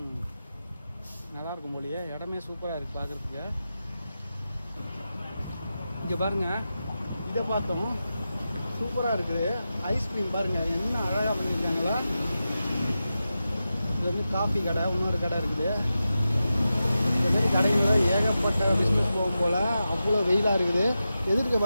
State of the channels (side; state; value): both; inverted; correlation -0.91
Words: நல்லாயிருக்கும் போலியே, இடமே சூப்பராக இருக்குது பார்க்குறதுக்கு. இங்கே பாருங்கள், இதை பார்த்தோம், சூப்பராக இருக்குது. ஐஸ்கிரீம் பாருங்கள் என்ன அழகாக பண்ணியிருக்காங்களா. இது வந்து காஃபி கடை, இன்னொரு கடை இருக்குது. இந்த மாதிரி கடைகளில் ஏகப்பட்ட பிஸ்னஸ் போகும் போல். அவ்வளோ வெயிலாக இருக்குது. எதிர்க்க